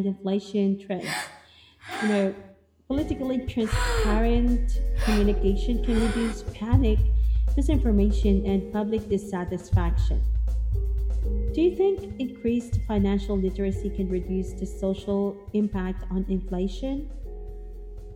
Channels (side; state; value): both; identical; correlation 1.00